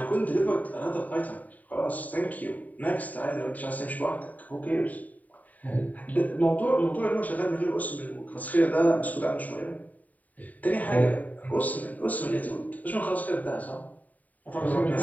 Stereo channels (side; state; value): right; late; 0.074 ms